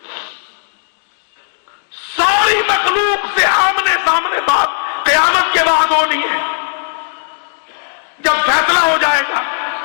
ساری مخلوق سے آمنے سامنے بات قیامت کے بعد ہونی ہے، جب فیصلہ ہو جائے گا.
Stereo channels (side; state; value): right; silent; digital silence